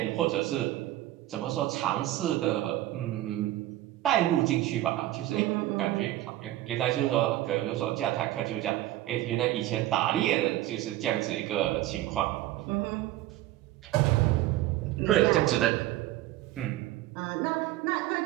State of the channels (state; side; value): quieter; left; 15.3 dB